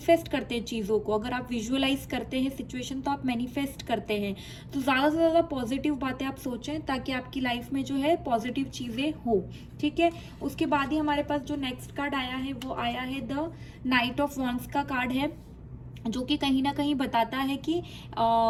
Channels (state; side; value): identical; both; correlation 1.00